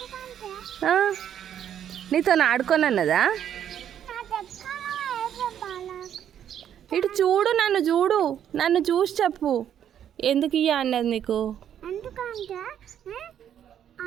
నీతో ఆడుకోనన్నదా? ఇటు చూడు, నన్ను చూసి చెప్పు ఎందుకు ఇయ్య అన్నది నీకు.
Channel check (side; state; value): left; quieter; 9.7 dB